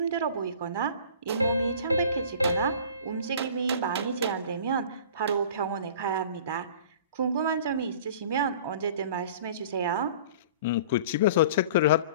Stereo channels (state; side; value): inverted; both; correlation -0.44